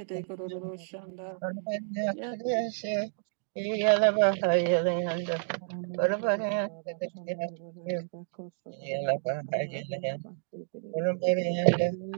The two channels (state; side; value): silent; left; digital silence